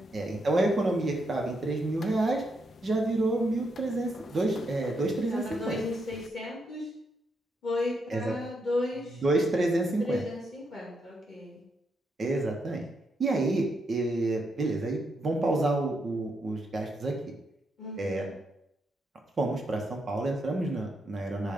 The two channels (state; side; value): normal; both; correlation 0.80